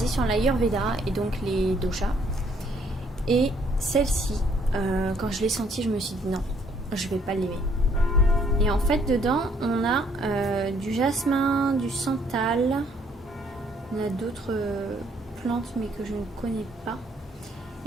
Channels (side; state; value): both; normal; correlation 0.66